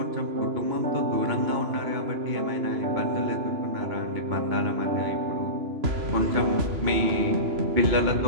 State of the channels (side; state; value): left; late; 2.9 ms